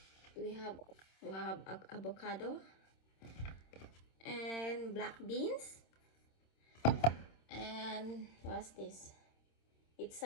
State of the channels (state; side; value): late; right; 26 ms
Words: We have avocado and black beans. And what's this? It's